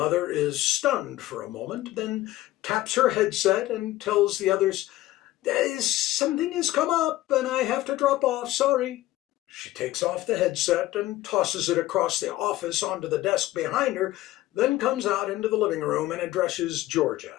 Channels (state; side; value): quieter; right; 16.1 dB